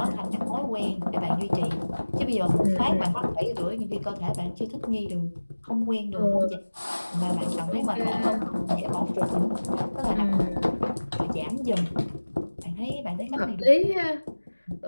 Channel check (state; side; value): inverted; both; correlation -1.00